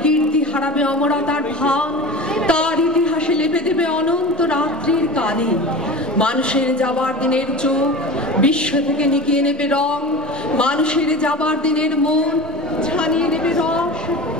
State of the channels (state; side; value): normal; both; correlation 0.32